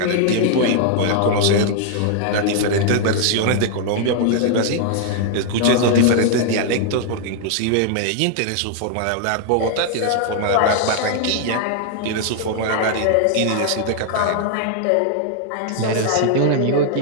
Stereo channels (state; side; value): different; both; correlation -0.01